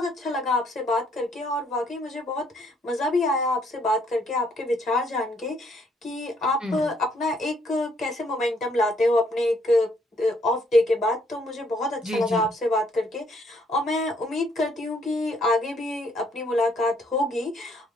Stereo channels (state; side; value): normal; both; correlation 0.68